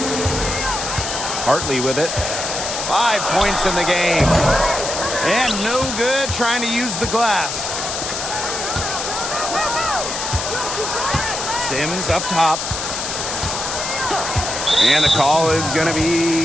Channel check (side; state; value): left; noise; hiss, 4 dB below the sound